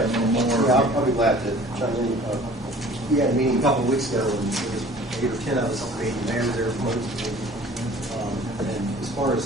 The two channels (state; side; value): normal; both; correlation 0.49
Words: a little more. Yeah, I'll be glad to chime in. We had a meeting a couple of weeks ago, and there was 8 or 10 of us at the meeting. The mayor was there, and far